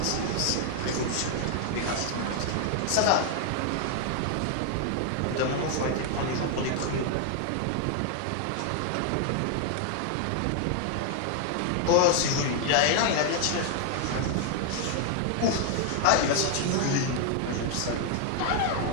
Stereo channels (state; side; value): different; both; correlation 0.00